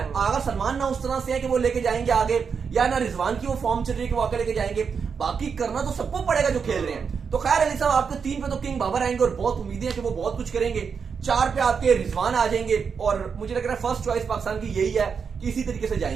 अगर सलमान ना उस तरह से है कि वो लेके जाएंगे आगे, या ना रिजवान की वो फॉर्म चल रही है कि वो आगे लेके जाएंगे, बाकी करना तो सबको पड़ेगा जो खेल रहे हैं। तो खैर अली साहब, आपके 3 पे तो किंग बाबर आएंगे और बहुत उम्मीदें हैं कि वो बहुत कुछ करेंगे। 4 पे आपके रिजवान आ जाएंगे, और मुझे लग रहा है फर्स्ट चॉइस पाकिस्तान की यही है कि इसी तरीके से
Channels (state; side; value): quieter; left; 6.1 dB